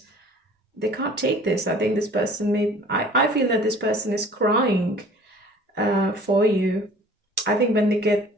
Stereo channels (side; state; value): both; normal; correlation 0.49